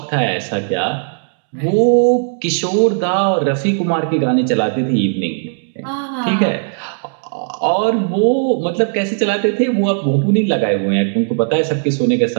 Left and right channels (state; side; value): silent; left; digital silence